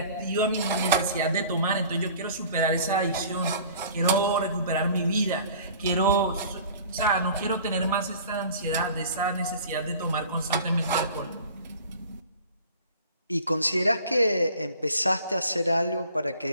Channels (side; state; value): both; inverted; correlation -0.46